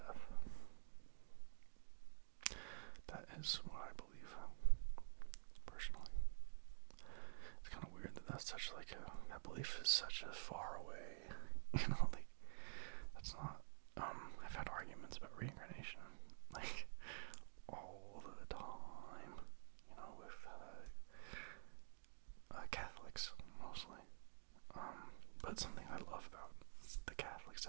That is what I believe, personally. It's kind of weird that that's such like that belief is such a far away, that's not, I've had arguments about reincarnation, all the time, with, Catholics, mostly, but something I love about the Catholics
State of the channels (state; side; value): silent; left; digital silence